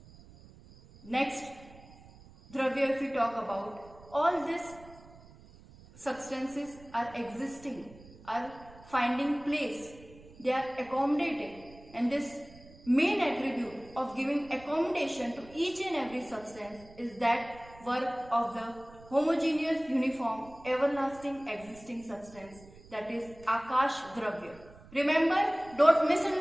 Next Dravya, if we talk about, all these substances are existing, are finding place, they are accommodating, and this main attribute of giving accommodation to each and every substance is that work of the homogeneous, uniform, everlasting existing substance, that is Akash Dravya. Remember, don't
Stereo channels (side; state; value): right; noise; rumble, 21 dB below the sound